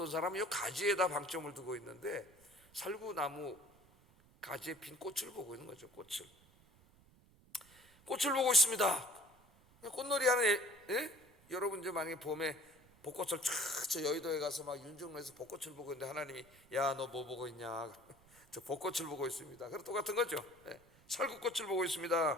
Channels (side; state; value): right; noise; rumble, 27 dB below the sound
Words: 사람은 이 가지에다 방점을 두고 있는데 살구나무 가지에 핀 꽃을 보고 있는 거죠. 꽃을 보고 있습니다. 꽃놀이 하는 여러분 이제 만약에 봄에 벚꽃을 저 여의도에 가서 막 윤중로에서 벚꽃을 보고 있는데 하나님이 야 너 뭐 보고 있냐? 저 벚꽃을 보고 있습니다. 그럼 똑같은 거죠. 살구꽃을 보고